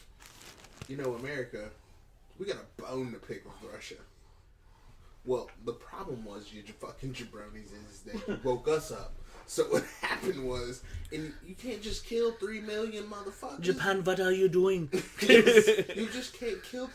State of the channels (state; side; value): identical; both; correlation 1.00